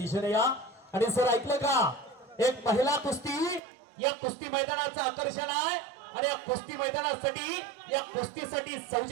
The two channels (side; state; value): left; drops out; at 3.6 s